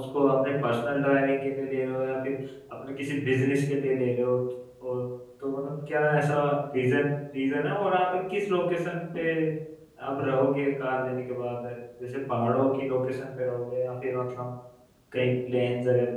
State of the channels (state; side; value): identical; both; correlation 1.00